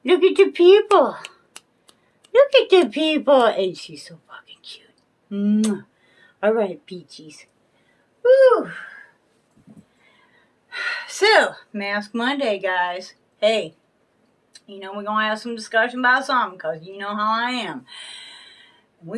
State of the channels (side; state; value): both; identical; correlation 1.00